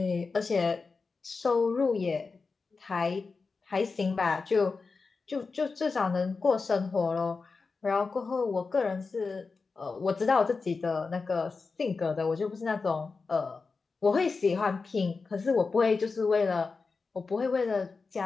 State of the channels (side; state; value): right; quieter; 4.4 dB